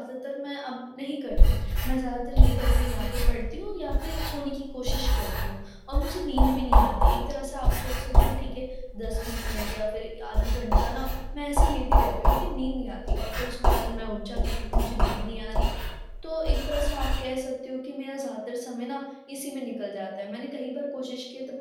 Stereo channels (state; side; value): identical; both; correlation 1.00